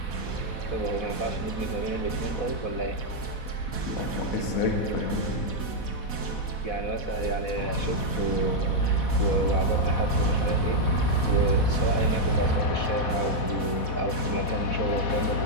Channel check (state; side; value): late; right; 4.1 ms